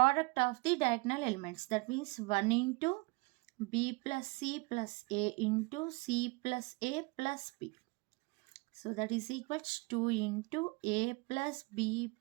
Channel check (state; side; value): quieter; left; 27.1 dB